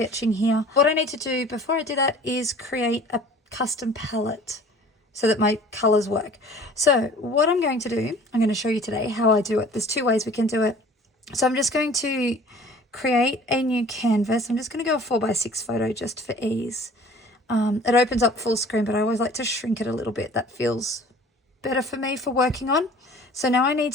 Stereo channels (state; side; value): normal; both; correlation 0.48